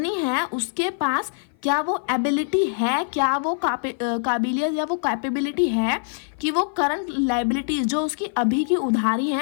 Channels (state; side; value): silent; right; 56 dB below the other